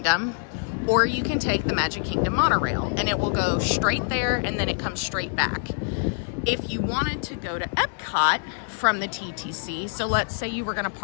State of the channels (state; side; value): silent; right; 62 dB below the other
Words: or you can take the Magic Kingdom monorail, and it will go straight there and then it comes straight back. If you wanted to go to Epcot from the TTC, so let's say you were gonna